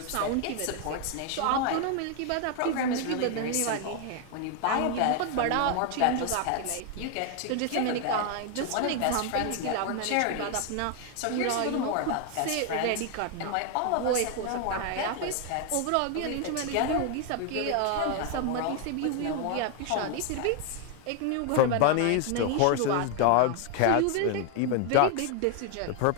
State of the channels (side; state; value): both; different; correlation 0.01